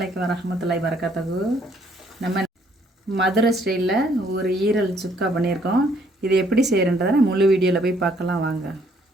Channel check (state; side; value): normal; both; correlation 0.66